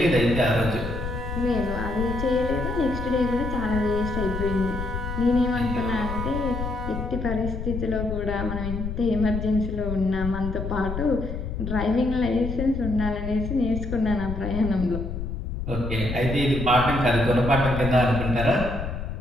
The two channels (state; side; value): noise; left; rumble, 5 dB below the sound